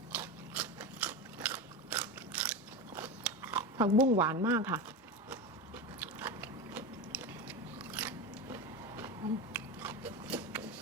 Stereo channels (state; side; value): normal; both; correlation 0.21